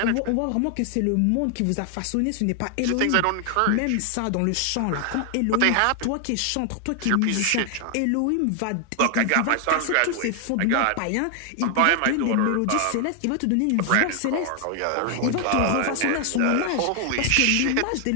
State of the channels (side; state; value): both; different; correlation 0.00